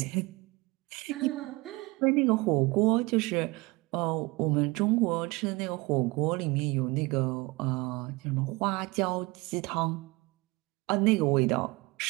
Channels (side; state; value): left; quieter; 23.9 dB